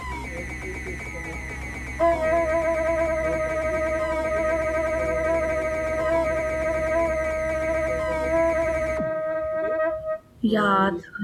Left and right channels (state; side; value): identical; both; correlation 1.00